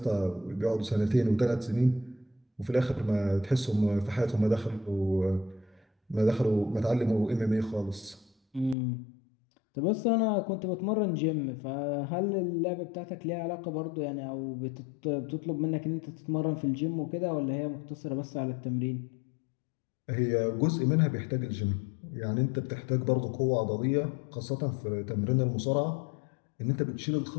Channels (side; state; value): right; drops out; at 8.8 s